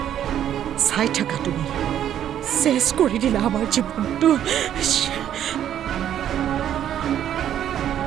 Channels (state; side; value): quieter; left; 10.4 dB